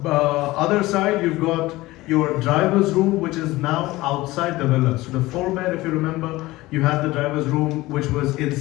other side, you've got your driver's room, which is now outside the villa. So the 4-bed, if you remember, you had the driver's room, which was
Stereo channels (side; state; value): right; quieter; 19.0 dB